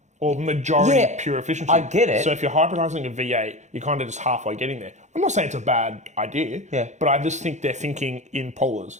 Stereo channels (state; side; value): late; left; 0.34 ms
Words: Or majority pure efficiency. I get it. So if you're hybridizing a V8, you're kind of just halfway getting there. I'm not saying it's a bad idea, but I just think they're thinking in polars.